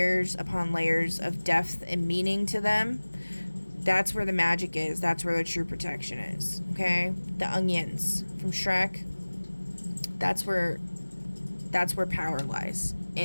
upon layers of depth and meaning to them. That's where the magic is. That's where the true protection is. Okay? The onions from Shrek. That's where power lies,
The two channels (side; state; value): both; inverted; correlation -1.00